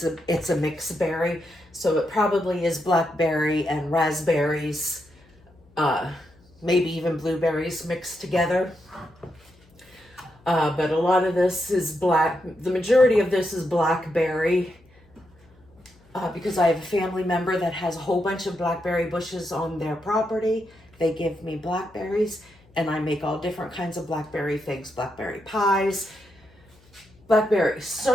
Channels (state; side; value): noise; left; hum, 29 dB below the sound